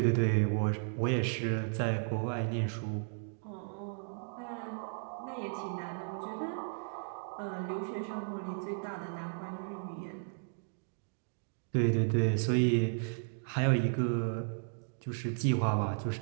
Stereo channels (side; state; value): left; silent; digital silence